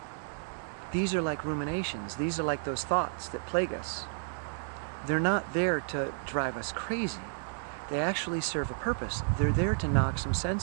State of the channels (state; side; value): silent; left; 55 dB below the other